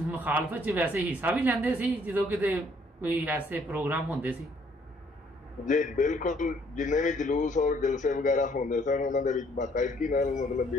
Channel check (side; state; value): both; normal; correlation 0.64